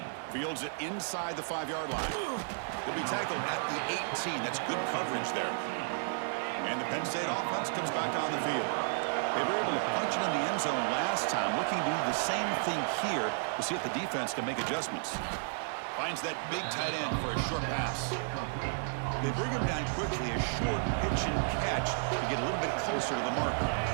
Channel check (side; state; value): left; silent; digital silence